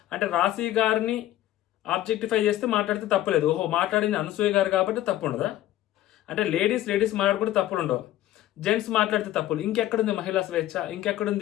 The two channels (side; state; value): right; quieter; 13.9 dB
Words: అంటే రాశి గారిని ఆబ్జెక్టిఫై చేస్తే మాట్లాడితే తప్పులేదు, ఓహో మాట్లాడింది అనసూయ గారు కాబట్టి తప్పు ఉండదా? అంటే లేడీస్ మాట్లాడుకుంటే తప్పులు ఉండవు, జెంట్స్ మాట్లాడితే తప్పులు. ఇంకెక్కడుంది మహిళా స్వేచ్ఛ?